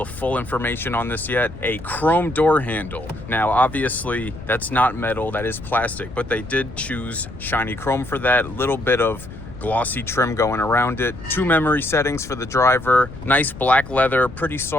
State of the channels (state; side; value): noise; left; rumble, 14 dB below the sound